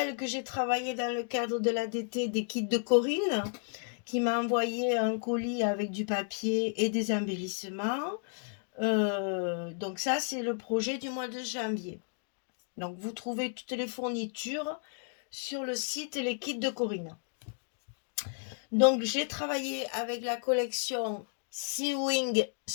que j'ai travaillé dans le cadre de l'ADT des kits de Corinne, qui m'a envoyé un colis avec du papier et des embellissements. Donc, ça, c'est le projet du mois de janvier. Donc, vous trouvez toutes les fournitures sur le site Les Kits de Corinne. Donc, j'ai travaillé avec la collection Sewing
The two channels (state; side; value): silent; right; 56 dB below the other